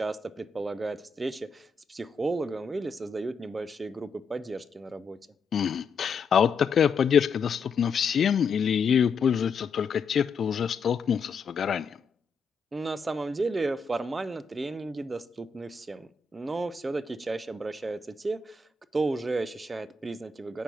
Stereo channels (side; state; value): right; quieter; 4.5 dB